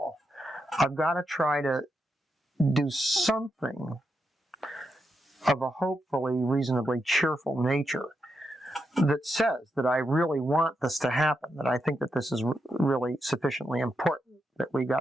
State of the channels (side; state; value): both; normal; correlation 0.84